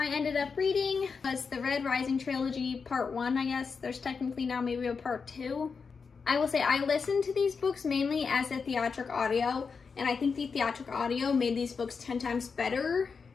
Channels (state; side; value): quieter; right; 5.3 dB